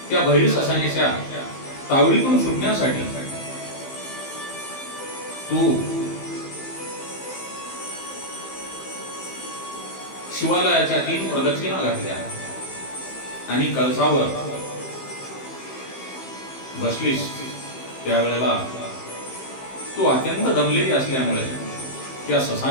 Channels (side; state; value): right; late; 15 ms